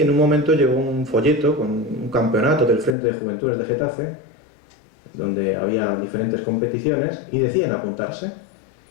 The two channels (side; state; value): right; drops out; at 3.0 s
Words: un momento llegó un folleto con un campeonato del Frente de Juventudes de Getafe, donde había diferentes competiciones, y decían apuntarse.